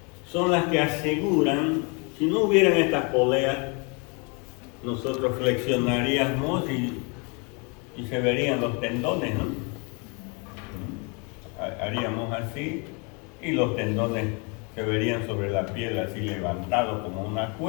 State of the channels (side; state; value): right; quieter; 32.9 dB